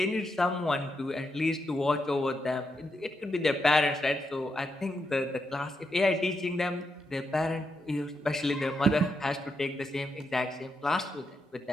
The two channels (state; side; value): normal; both; correlation 0.83